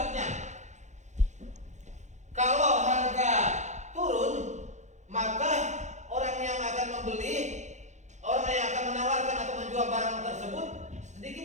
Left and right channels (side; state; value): left; late; 0.34 ms